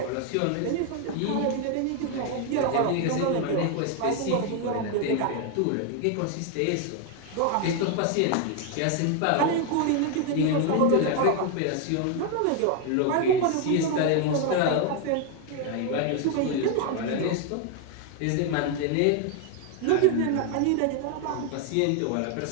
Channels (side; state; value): both; different; correlation 0.01